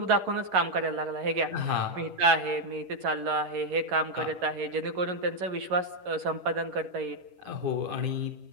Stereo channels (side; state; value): left; late; 11 ms